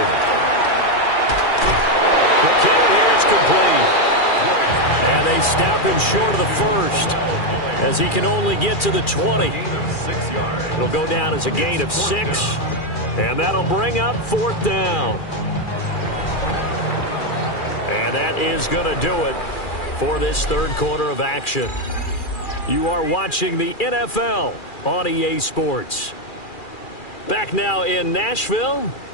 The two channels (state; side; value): late; right; 2.4 ms